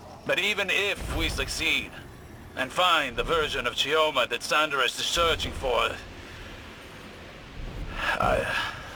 But even if we succeed, and find the version of Chioma that Sundaresh is searching for,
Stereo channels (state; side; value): identical; both; correlation 1.00